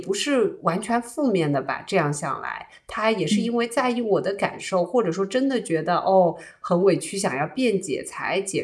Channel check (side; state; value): both; identical; correlation 1.00